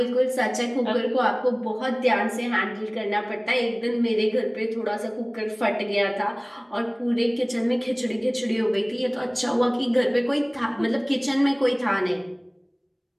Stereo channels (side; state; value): both; identical; correlation 1.00